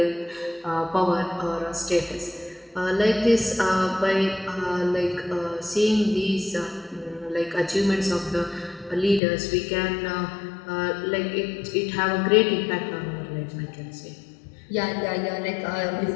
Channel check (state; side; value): drops out; right; at 9.2 s